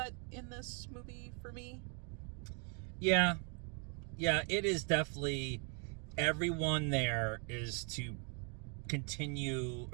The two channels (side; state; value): left; quieter; 35.0 dB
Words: in this movie for me. Yeah, it is definitely, everyone there is to continue,